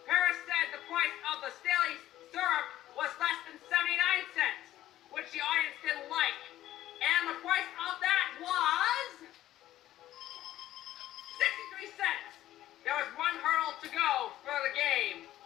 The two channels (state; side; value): quieter; right; 13.8 dB